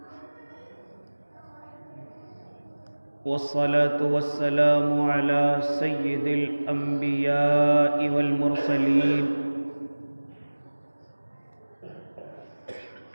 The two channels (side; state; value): both; inverted; correlation -1.00